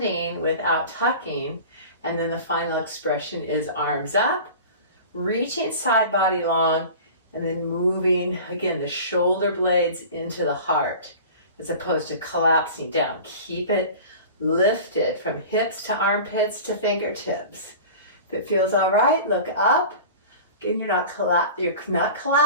without tucking. And then the final expression is arms up, reaching side body long, and then moving, again, the shoulder blades into the heart as opposed to collapsing down. Keep it lifted from hips to armpits to fingertips. If it feels all right, look up. Again, you're not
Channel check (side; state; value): both; inverted; correlation -0.38